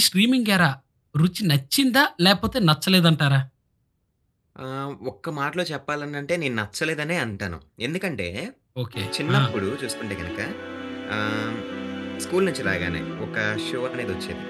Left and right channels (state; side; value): identical; both; correlation 1.00